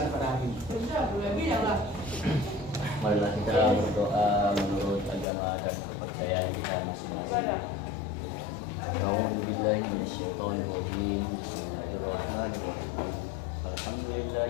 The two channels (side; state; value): right; drops out; at 5.2 s